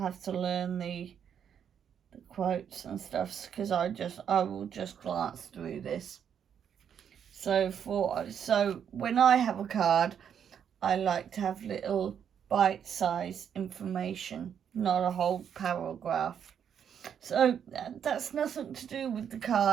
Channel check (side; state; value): left; quieter; 8.3 dB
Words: to learn the quotes and stuff, because I will just glance through this. So when I have a card, I like to have little bite-sized information, not a whole paragraph. So that's nothing to do with the